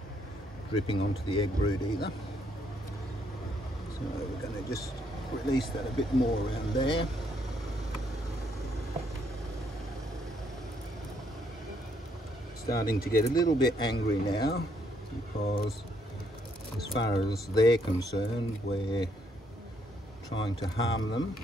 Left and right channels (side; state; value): both; normal; correlation 0.71